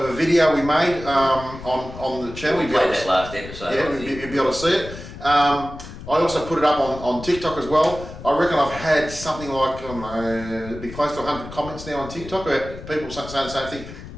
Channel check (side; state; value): left; noise; rumble, 13 dB below the sound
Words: video we made on the channel. We played that last episode. Yeah, you'll be able to see it. I also put it up on TikTok as well. I reckon I've had something like, it'd be close to 100 comments now on TikTok about people saying the same thing.